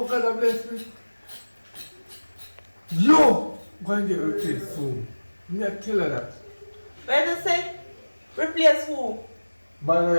God has blessed me? You go and get replaced soon. Me I tell her that. Where do you say? Replace who? Man,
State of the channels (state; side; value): inverted; both; correlation -1.00